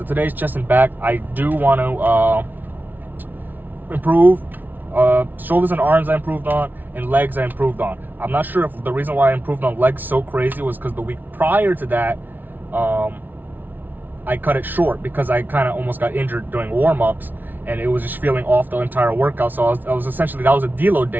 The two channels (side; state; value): left; late; 0.087 ms